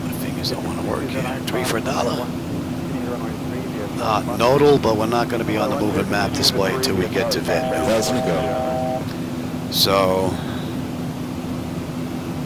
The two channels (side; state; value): both; identical; correlation 1.00